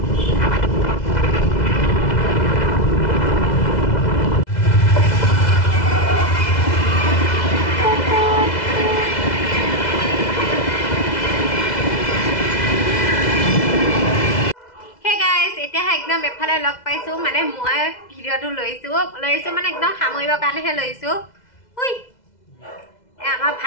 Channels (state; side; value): late; right; 2.0 ms